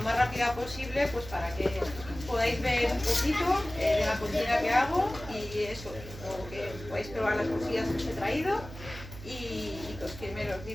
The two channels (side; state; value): right; noise; hum, 13 dB below the sound